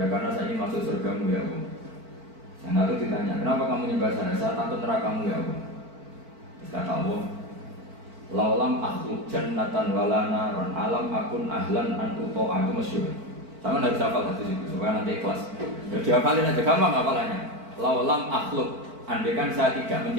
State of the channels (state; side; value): late; left; 4.5 ms